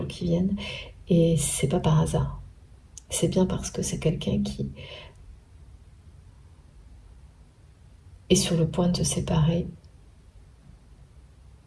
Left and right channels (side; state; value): both; identical; correlation 1.00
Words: qui viennent. Et c'est pas par hasard. C'est bien parce que c'est quelqu'un qui est sur le point de se séparer.